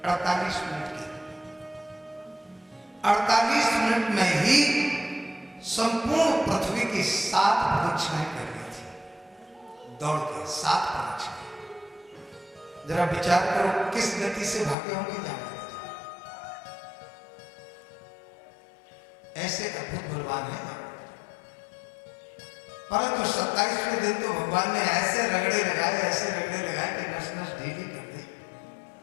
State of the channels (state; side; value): drops out; right; at 14.8 s